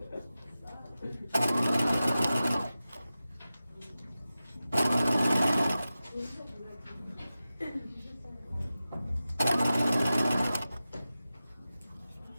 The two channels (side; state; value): both; inverted; correlation -0.94